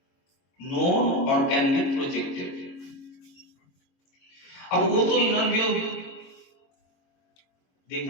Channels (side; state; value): right; late; 22 ms